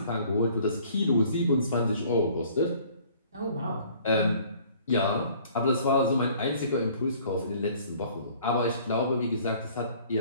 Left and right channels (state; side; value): inverted; both; correlation -0.55